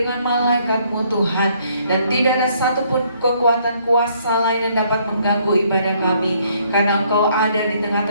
malaikat-Mu Tuhan. Dan tidak ada satupun kekuatan kuasa lain yang dapat mengganggu ibadah kami, karena Engkau ada di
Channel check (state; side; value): inverted; both; correlation -0.66